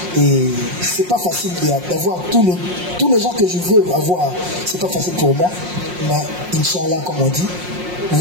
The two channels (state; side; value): late; left; 5.6 ms